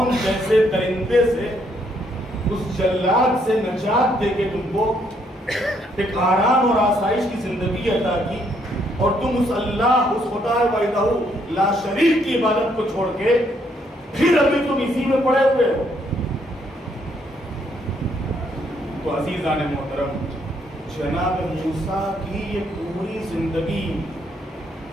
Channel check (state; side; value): normal; both; correlation 0.71